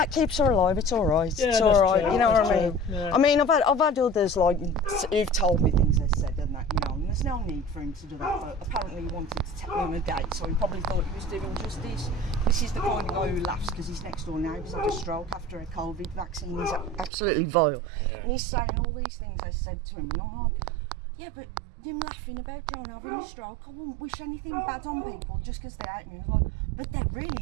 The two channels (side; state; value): left; drops out; at 17.1 s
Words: keeps her alive, it's alright. Yeah, it's alright, true, you know what I true. mean? Yeah. I mean, I've had others like who've told me things they said and that, you know, and there's no need for him to do that, but apparently he wanted to take me on a date, so he probably thought he was doing justice. This is the kind of guy who laughs because his next door neighbour's had a stroke after a COVID vaccine. He's absolutely vile. Yeah. And he's saying all these things I said to him, and I'm like, yeah, but him laughing about John having a stroke, I wouldn't wish anything bad on people just because they hate me. I was like, but they